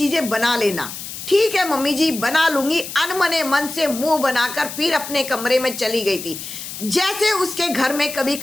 बना लेना। ठीक है मम्मी जी, बना लूंगी। अनमने मन से मुंह बनाकर फिर अपने कमरे में चली गई थी, जैसे उसके घर में कभी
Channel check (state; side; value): noise; left; hiss, 9 dB below the sound